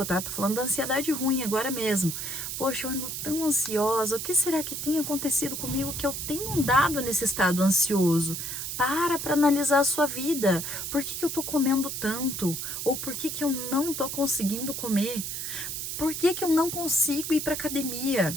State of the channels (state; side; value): noise; right; hiss, 5 dB below the sound